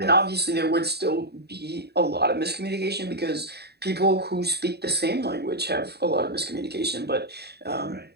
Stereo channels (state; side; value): late; left; 0.48 ms